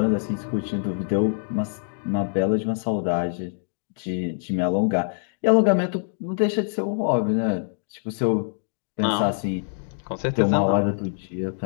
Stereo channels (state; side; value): silent; right; digital silence